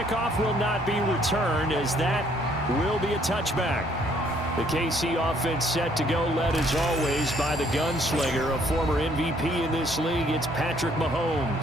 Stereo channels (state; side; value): normal; both; correlation 0.65